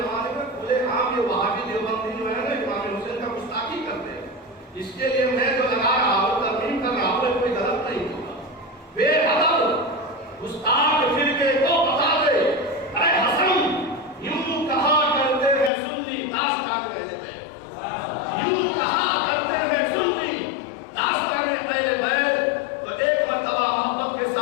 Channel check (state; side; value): drops out; right; at 15.7 s